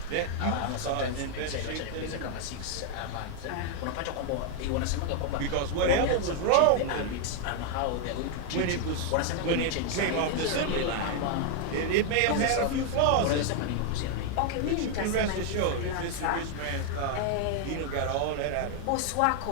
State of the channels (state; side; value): different; both; correlation 0.00